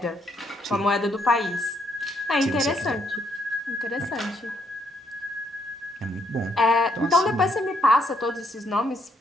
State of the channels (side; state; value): both; normal; correlation 0.73